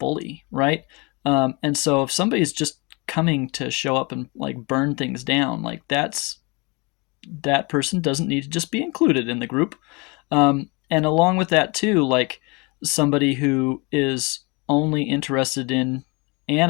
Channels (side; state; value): right; quieter; 28.4 dB